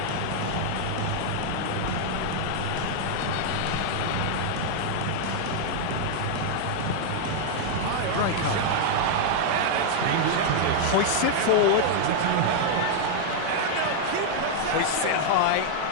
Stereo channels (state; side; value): different; both; correlation 0.00